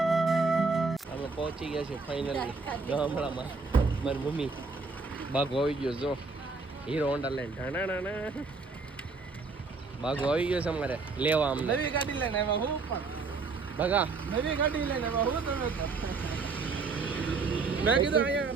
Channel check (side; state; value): left; quieter; 4.2 dB